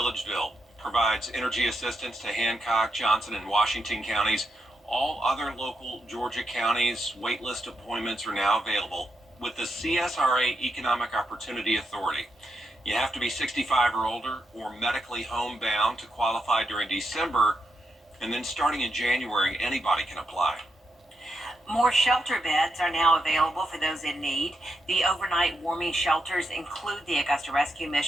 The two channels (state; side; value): normal; both; correlation 0.83